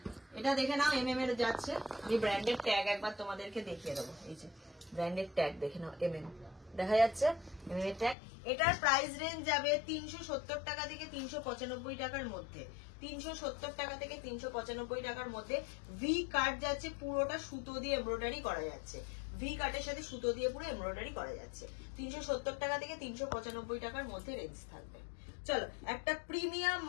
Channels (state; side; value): drops out; right; at 8.2 s